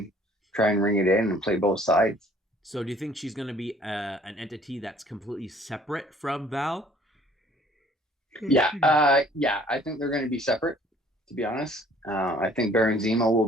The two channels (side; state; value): both; normal; correlation 0.56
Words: try and ring it in and play both sides. So do you think she's going to be an entity that's completely separate from Val? Yeah, I think they're going to be separate, to be honest. I think Baron Zemo